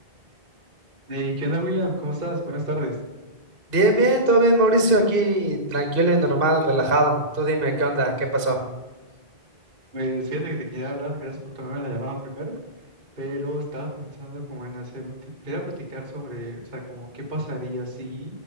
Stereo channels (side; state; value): left; late; 2.5 ms